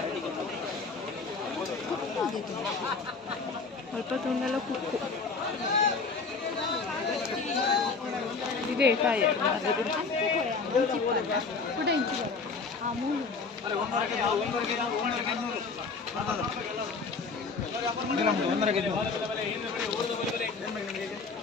ಅಲ್ಪ ತುಂಡೆಲ್ಲ ಕುಕ್ಕು ಇದೇ ಕಾಯಿ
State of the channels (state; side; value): quieter; right; 4.5 dB